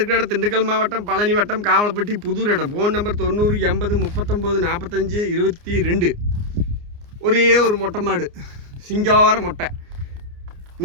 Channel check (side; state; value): left; late; 29 ms